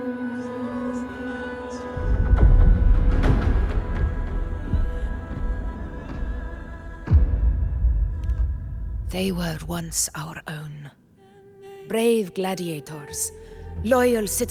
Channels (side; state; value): both; identical; correlation 1.00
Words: They were once our own. Brave gladiators, loyal